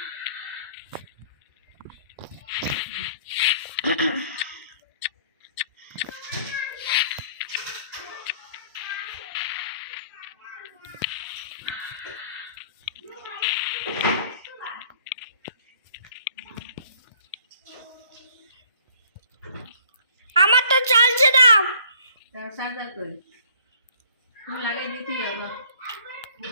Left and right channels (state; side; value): inverted; both; correlation -0.55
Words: আমার তো চালছে দাও। চার্জার কই? তুমি লাগাই দিতেই হবে।